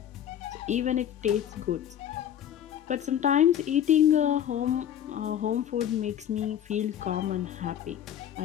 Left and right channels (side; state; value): right; quieter; 10.2 dB